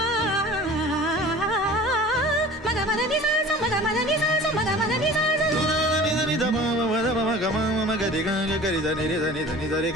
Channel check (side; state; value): both; normal; correlation 0.42